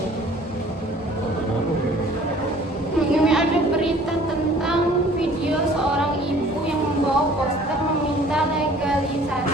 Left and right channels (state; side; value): normal; both; correlation 0.52